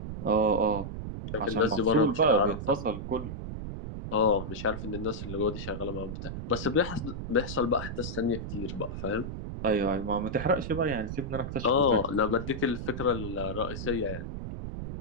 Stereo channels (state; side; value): noise; right; rumble, 7 dB below the sound